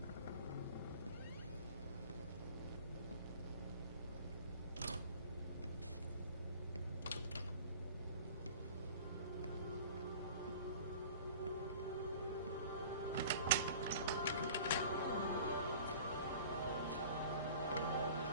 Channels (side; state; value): both; inverted; correlation -0.43